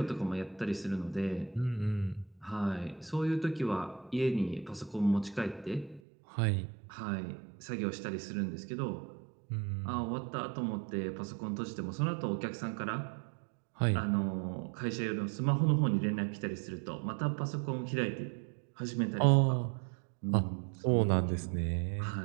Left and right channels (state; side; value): drops out; left; at 6.0 s